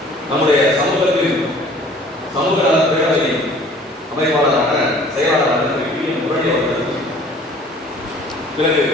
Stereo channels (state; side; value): normal; both; correlation 0.51